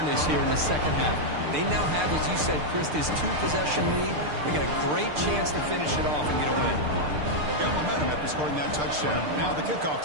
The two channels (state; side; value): late; left; 6.7 ms